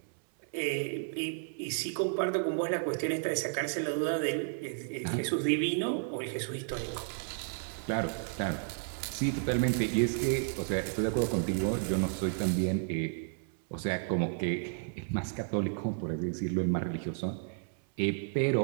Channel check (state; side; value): silent; left; 56 dB below the other